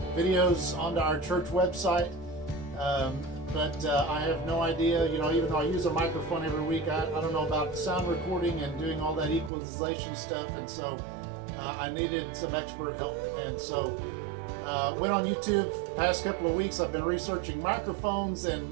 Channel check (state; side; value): drops out; left; at 9.5 s